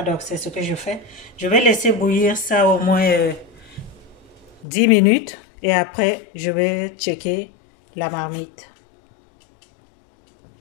donc c'est ce que je fais. Je vais laisser bouillir ça au moins 10 minutes et après je vais checker la marmite.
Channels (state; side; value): drops out; right; at 4.7 s